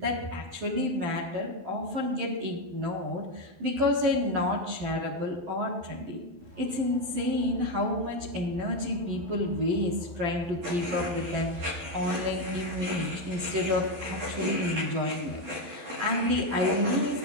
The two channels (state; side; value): late; left; 12 ms